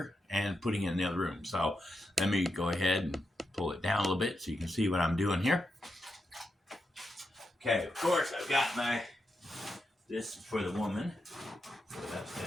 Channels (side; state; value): both; normal; correlation 0.86